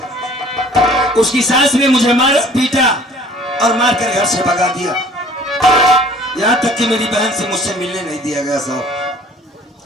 उसकी सास ने मुझे मारा पीटा और मारकर घर से भगा दिया। यहां तक कि मेरी बहन से मुझसे मिलने नहीं दिया गया साहब।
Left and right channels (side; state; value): both; normal; correlation 0.51